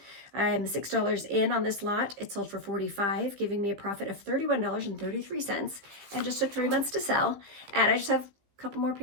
I'm $6 in on this lot. It sold for $45, giving me a profit of $31.33, and just took 3 months to sell. And I just have a couple more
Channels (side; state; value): left; late; 15 ms